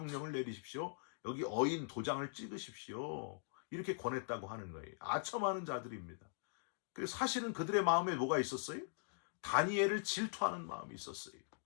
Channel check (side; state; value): right; silent; digital silence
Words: 내리십시오. 여기 어인 도장을 찍으십시오. 이렇게 권했다고 하는 거예요. 아첨하는 자들입니다. 그래서 사실은 그들의 마음에 뭐가 있었어요? 다니엘을 질투하는 마음이 있었어요.